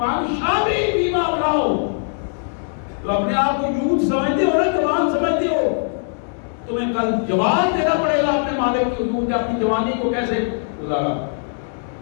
شابہ فیما ابلاہ، تو اپنے آپ کو یوتھ سمجھتے ہو نا، جوان سمجھتے ہو، تمہیں کل جواب دینا پڑے گا اپنے مالک کی حضور، اپنی جوانی کو کیسے گزارا۔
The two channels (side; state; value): right; silent; digital silence